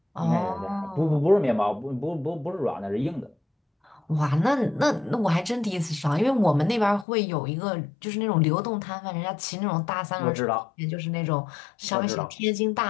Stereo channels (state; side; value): drops out; right; at 7.1 s